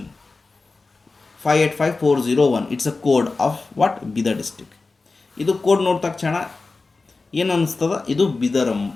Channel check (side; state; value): right; quieter; 3.8 dB